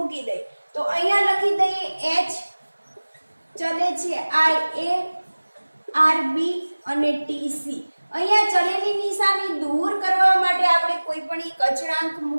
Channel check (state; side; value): inverted; both; correlation -1.00